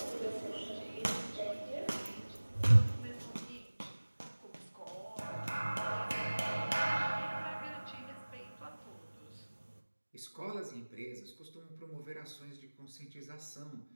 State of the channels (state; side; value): inverted; both; correlation -1.00